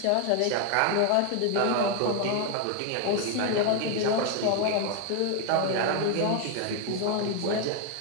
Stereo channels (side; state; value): both; different; correlation 0.01